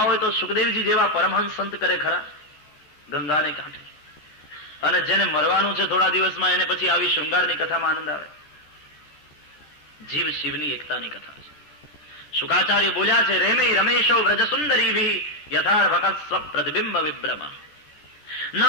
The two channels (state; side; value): late; right; 14 ms